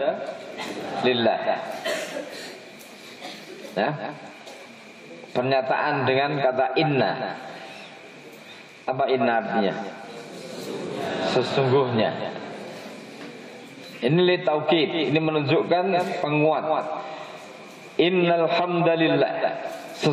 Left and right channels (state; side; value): identical; both; correlation 1.00